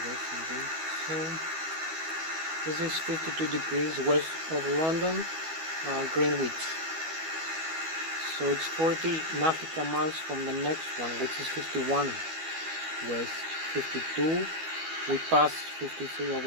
So this is 52 degrees west of London, Greenwich. So it's 40 nautical miles from the next one, which is 51 west. 52. We passed 53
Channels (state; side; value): late; left; 12 ms